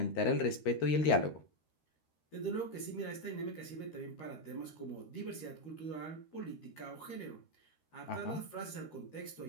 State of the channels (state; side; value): late; right; 13 ms